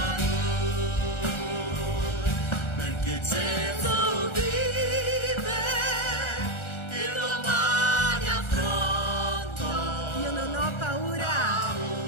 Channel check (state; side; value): late; right; 1.4 ms